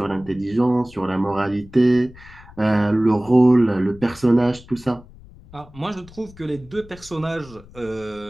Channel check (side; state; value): left; noise; rumble, 21 dB below the sound